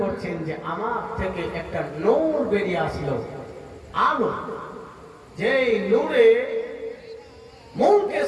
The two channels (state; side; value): identical; both; correlation 1.00